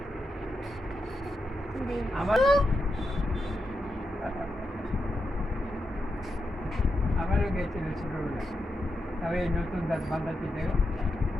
আমার আমারও গেছিল ছোটবেলা। তবে এই নতুন দাঁত বাঁধাতে দেখো,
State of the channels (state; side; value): normal; both; correlation 0.87